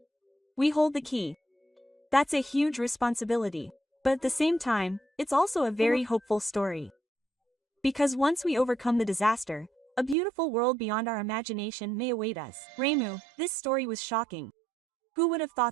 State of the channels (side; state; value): left; drops out; at 10.2 s